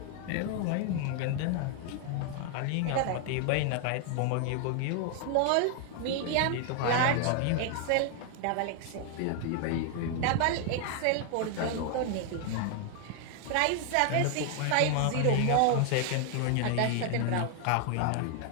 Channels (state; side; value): different; both; correlation 0.00